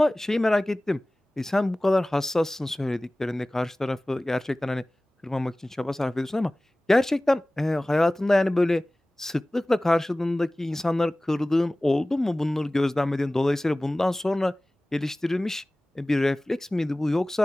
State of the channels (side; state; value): both; normal; correlation 0.98